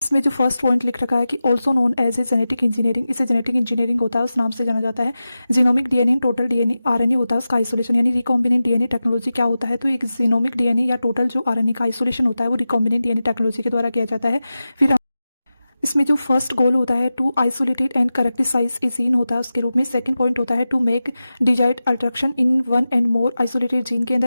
इसमें जो फर्स्ट पॉइंट लिख रखा है कि also known as a genetic engineering, इसे जेनेटिक इंजीनियरिंग होता है, उस नाम से जाना जाता है। Genomic DNA, total DNA, RNA होता है उसका आइसोलेशन, यानी रिकॉम्बिनेंट डीएनए टेक्नोलॉजी क्या होता है, तो एक जीनोमिक डीएनए या टोटल जो आरएनए का आइसोलेशन होता है वो रिकॉम्बिनेंट डीएनए टेक्नोलॉजी के द्वारा किया जाता है। फिर इसमें जो फर्स्ट गोल होता है to isolated and characterise a gene होता है उसके रूप में। सेकंड पॉइंट होता है to make desired alteration in one and more isolated gene के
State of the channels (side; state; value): both; inverted; correlation -0.94